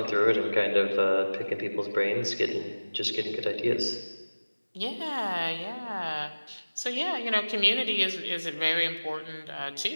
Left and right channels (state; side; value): inverted; both; correlation -1.00